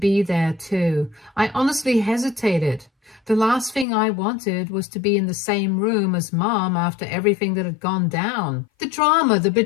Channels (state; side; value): drops out; right; at 3.9 s